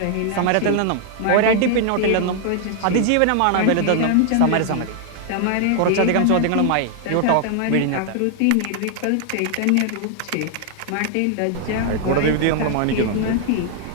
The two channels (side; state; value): both; different; correlation 0.00